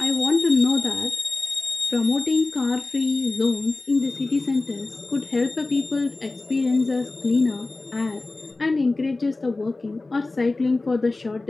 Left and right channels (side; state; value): right; quieter; 3.2 dB